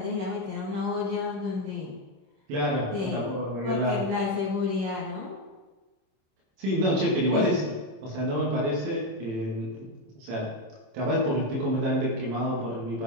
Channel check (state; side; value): late; left; 26 ms